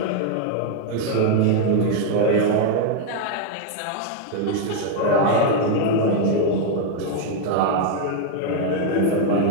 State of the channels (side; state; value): both; different; correlation 0.01